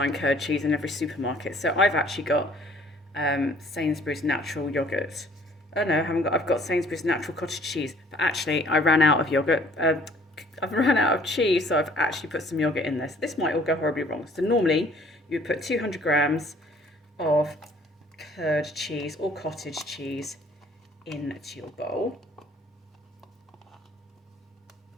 curd cheese in every supermarket, so I've actually got Sainsbury's natural yogurt. Oh no, I've got Sainsbury's natural cottage cheese, but actually I ran out of yogurt. I've run out of cheese, so I've actually put some yogurt in this. This might all go horribly wrong. So normally you would put 200 grams of curd cheese or cottage cheese into your bowl.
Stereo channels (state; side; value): normal; both; correlation 0.57